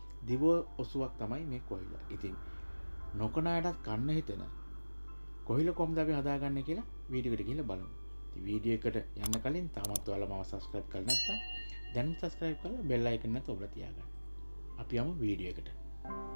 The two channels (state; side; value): inverted; both; correlation -1.00